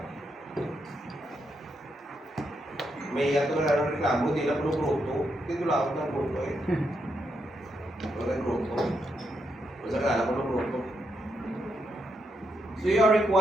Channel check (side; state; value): both; normal; correlation 0.81